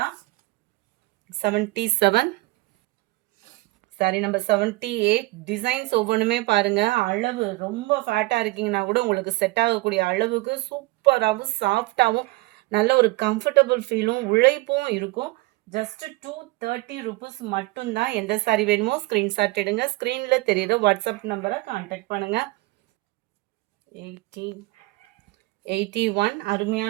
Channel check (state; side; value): quieter; left; 21.8 dB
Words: 77 சாரி நம்பர் 78 டிசைன்ஸ் ஒவ்வொன்றுமே பாருங்க. அளவு ரொம்ப ஃபேட்டா இருக்கீங்கன்னா கூட உங்களுக்கு செட் ஆகக்கூடிய அளவுக்கு சூப்பராகவும் சாஃப்டாகவும் நல்ல ஒரு கம்ஃபர்டபுள் ஃபீலும் உழைப்பும் இருக்கும். ஜஸ்ட் 230 rupees மட்டும்தான். எந்த சாரி வேணுமோ ஸ்க்ரீன்ஷாட் எடுங்க. ஸ்க்ரீனில் தெரியுற வாட்ஸ்அப் நம்பரை கான்டாக்ட் பண்ணுங்க. 81